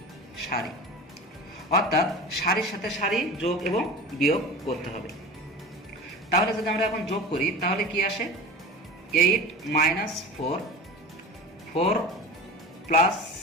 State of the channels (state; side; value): normal; both; correlation 0.33